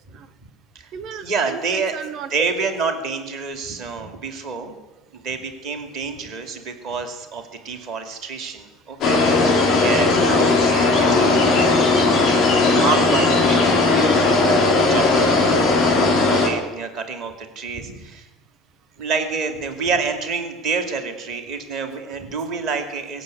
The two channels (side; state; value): both; normal; correlation 0.43